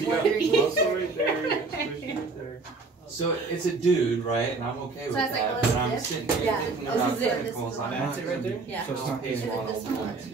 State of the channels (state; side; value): quieter; left; 4.0 dB